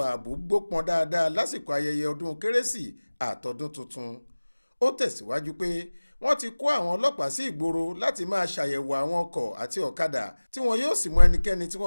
ààbò gbópọn dáadáa lásìkò ayẹyẹ ọdún kérésì àtọdún tuntun. Ó tẹ̀síwájú pé wọ́n ti kó àwọn ọlọ́pàá sí ìgboro láti máa ṣàyẹ̀wò àwọn ọkọ̀ àti ọ̀kadà tí wọn yóò sì mú ẹnikẹ́ni tí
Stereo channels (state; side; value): inverted; both; correlation -1.00